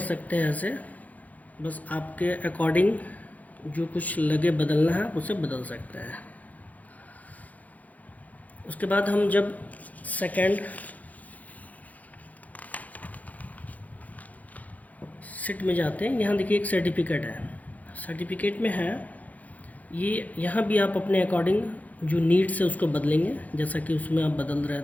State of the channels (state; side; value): late; right; 0.076 ms